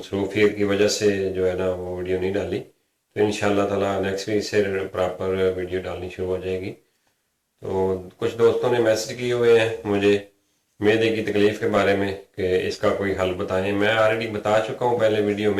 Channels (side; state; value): both; identical; correlation 1.00